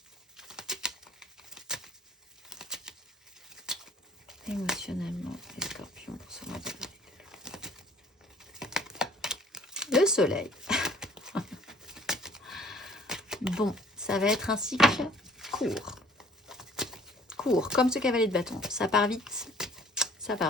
Émotionnellement, les scorpions, pour ce mois d'avril. Le soleil. Bon, ça va être un cycle court. Court, comme ce cavalier de bâton. Ça part vite. Ça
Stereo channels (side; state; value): both; normal; correlation 0.55